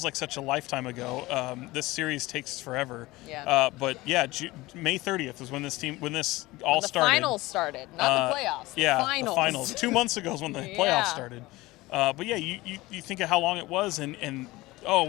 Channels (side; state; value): right; quieter; 19.9 dB